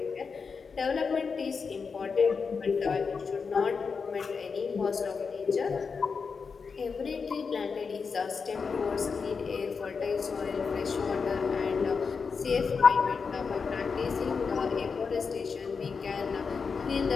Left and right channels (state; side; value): quieter; right; 5.3 dB